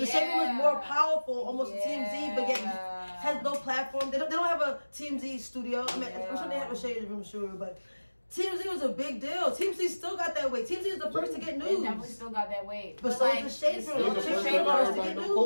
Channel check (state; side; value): inverted; both; correlation -1.00